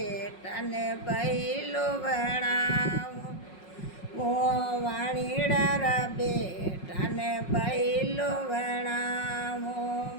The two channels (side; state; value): right; late; 5.5 ms